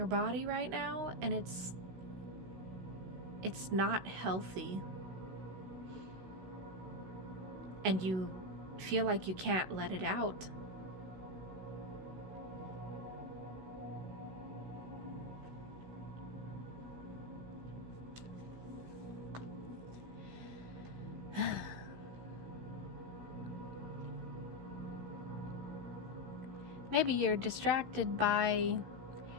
body right now, and it's not healthy. And you feel like you can't let it out. Maybe you're distracted by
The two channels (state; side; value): late; left; 16 ms